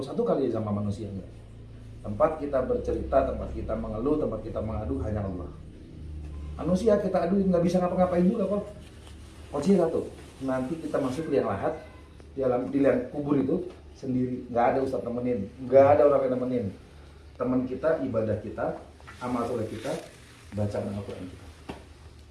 kali sama manusia enggak? Tempat kita bercerita, tempat kita mengeluh, tempat kita mengadu hanya Allah. Manusia kita adu nggak bisa ngapa-ngapain juga kok. Kuncinya satu, nanti kita masuk liang lahat, di liang kubur itu sendiri, nggak ada ustadz temenin, nggak ada orang yang nemenin. Teman kita, ibadah kita, amal soleh kita, bacaan Al-Quran kita.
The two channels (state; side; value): identical; both; correlation 1.00